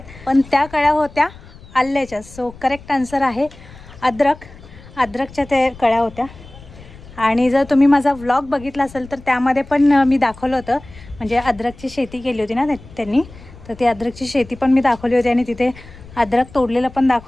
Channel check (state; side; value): noise; left; rumble, 19 dB below the sound